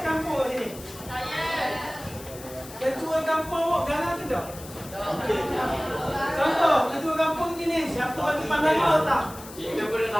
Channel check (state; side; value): noise; left; hiss, 16 dB below the sound